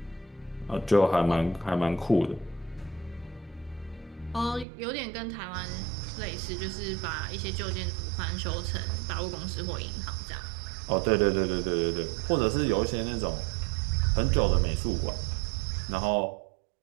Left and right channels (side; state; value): left; drops out; at 4.7 s